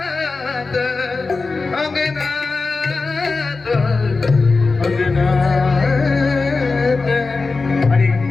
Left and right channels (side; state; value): right; quieter; 4.0 dB